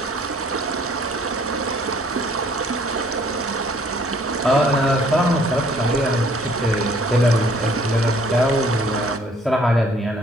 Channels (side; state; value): both; normal; correlation 0.59